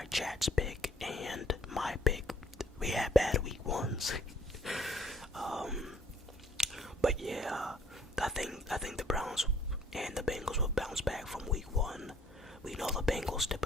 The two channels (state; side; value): normal; both; correlation 0.60